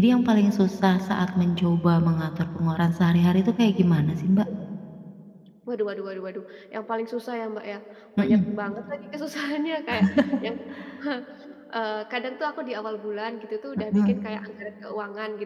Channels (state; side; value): identical; both; correlation 1.00